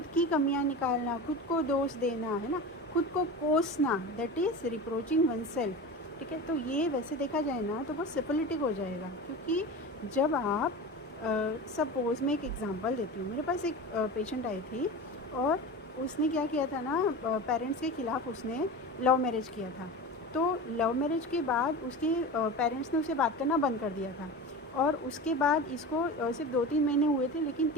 की कमियां निकालना, खुद को दोष देना, है ना, खुद को कोसना, that is reproaching one self. ठीक है। तो ये वैसे देखा जाए ना तो बहुत सिफिलिटिक हो जाएगा, क्योंकि जब आप सपोज़ मैं एक एग्ज़ाम्पल देती हूँ। मेरे पास एक पेशेंट आई थी और उसने क्या किया था ना, पेरेंट्स के ख़िलाफ़ उसने लव मैरिज किया था। तो लव मैरिज के बाद उसके पेरेंट्स ने उसे बात करना बंद कर दिया था, और उसके बाद इसको सिर्फ 2-3 महीने हुए थे, लेकिन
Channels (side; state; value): both; normal; correlation 0.30